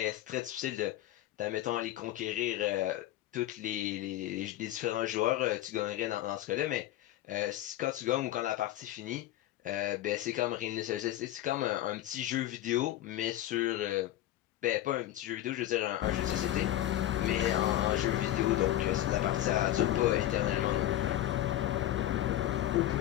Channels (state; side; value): quieter; right; 13.7 dB